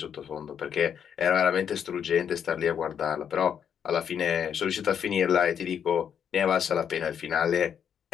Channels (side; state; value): right; quieter; 8.2 dB